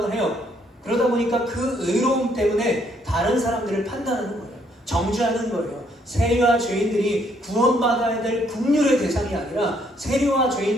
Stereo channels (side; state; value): both; normal; correlation 0.69